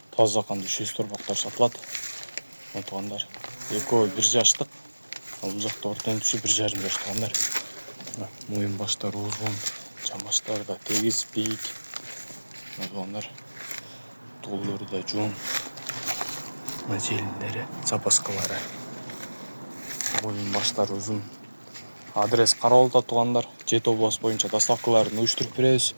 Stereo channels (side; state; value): both; inverted; correlation -1.00